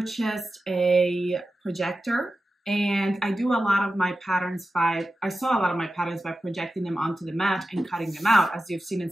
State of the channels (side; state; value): both; normal; correlation 0.92